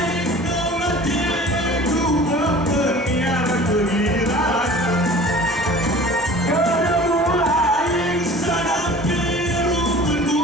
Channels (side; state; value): both; normal; correlation 0.44